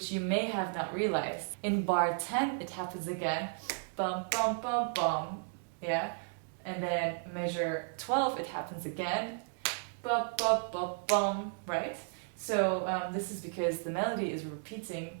you may have not realized. In bar 10 it happens again, bum bum bum bum, yeah, and then measure 12 it happens again, ba ba ba bum, right? So this is because the melody is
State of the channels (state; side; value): silent; left; digital silence